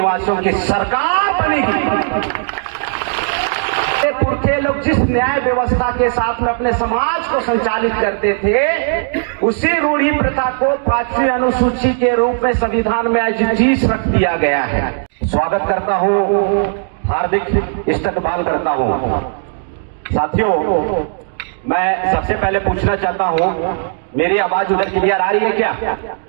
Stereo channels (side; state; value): left; silent; digital silence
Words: की सरकार बनेगी। पुरखे लोग जिस न्याय व्यवस्था के साथ में अपने समाज को संचालित करते थे, उसी रूढ़ी प्रथा को 5वीं अनुसूची के रूप में संविधान में आज जीस रख दिया गया है। स्वागत करता हूं, हार्दिक इस्तकबाल करता हूं। साथियों, मैं सबसे पहले पूछना चाहता हूं, मेरी आवाज उधर क्लियर आ रही है क्या?